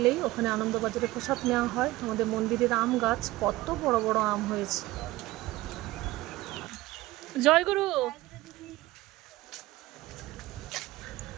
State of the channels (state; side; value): quieter; left; 18.3 dB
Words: ওখানে আনন্দবাজারে প্রসাদ নেওয়া হয়। আমাদের মন্দিরের আম গাছ, কত বড় বড় আম হয়েছে। জয়গুরু।